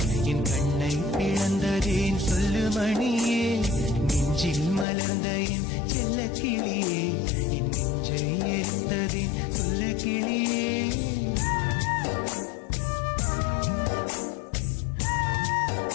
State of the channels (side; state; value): right; drops out; at 4.9 s